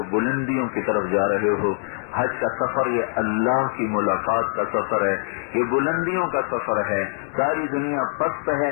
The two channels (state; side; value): silent; right; 63 dB below the other